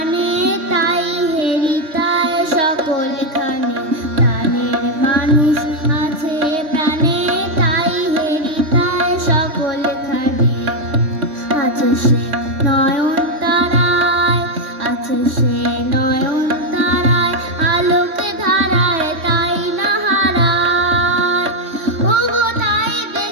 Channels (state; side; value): late; left; 3.1 ms